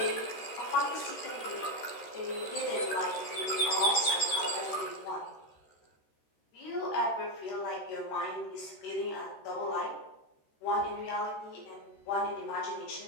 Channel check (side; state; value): right; late; 13 ms